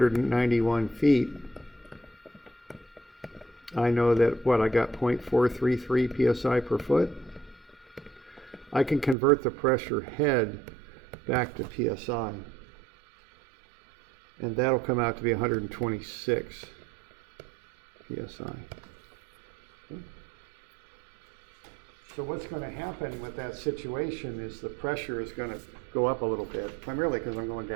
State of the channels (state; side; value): drops out; left; at 9.2 s